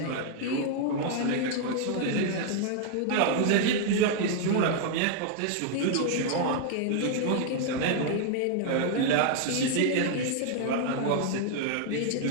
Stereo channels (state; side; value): different; both; correlation 0.00